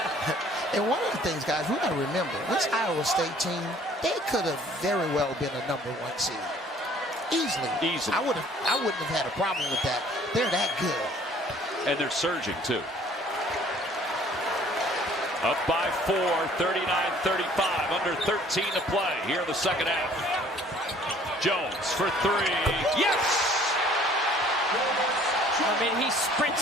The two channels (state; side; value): normal; both; correlation 0.55